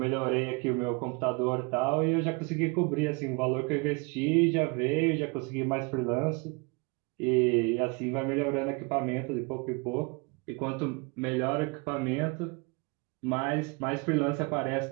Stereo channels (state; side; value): quieter; left; 29.5 dB